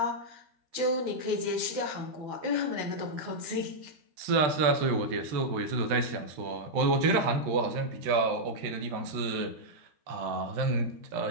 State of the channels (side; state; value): left; late; 13 ms